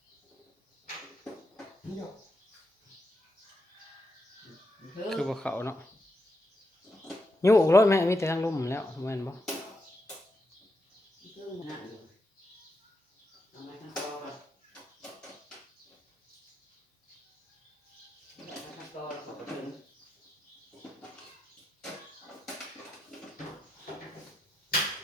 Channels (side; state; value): both; normal; correlation 0.84